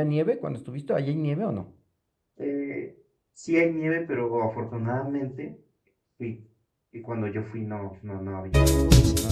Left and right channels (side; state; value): both; identical; correlation 1.00